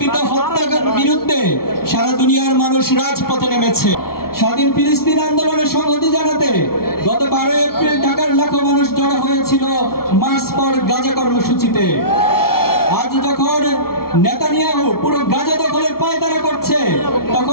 হত্যার বিরুদ্ধে সারা দুনিয়ার মানুষ রাজপথে নেমেছে। স্বাধীন ফিলিস্তিন আন্দোলনের সংহতি জানাতে গত 12 এপ্রিল ঢাকার লাখো মানুষ জড়ো হয়েছিল মার্চ ফর গাজা কর্মসূচিতে। আজ যখন নেতানিয়াহু পুরো গাজা দখলের পায়তারা করছে,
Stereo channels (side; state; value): right; late; 0.94 ms